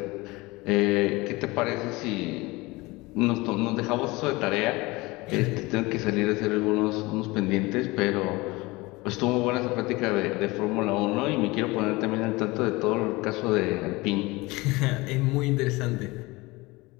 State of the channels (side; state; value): right; quieter; 22.6 dB